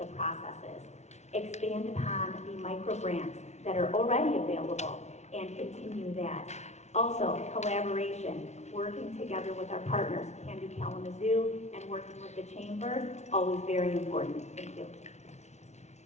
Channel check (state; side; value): late; right; 0.32 ms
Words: processes. Expand upon the micro grants that are already available and continue that. Also, collaboration, working together with our partners, Can Do Kalamazoo, and working with the Chamber, always very important. Thank you.